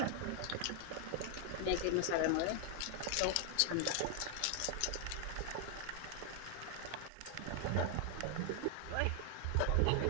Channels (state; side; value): different; both; correlation 0.00